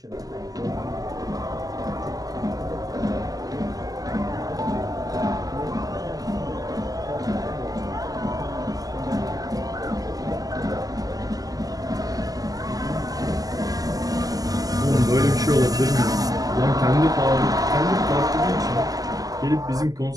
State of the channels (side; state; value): left; late; 0.17 ms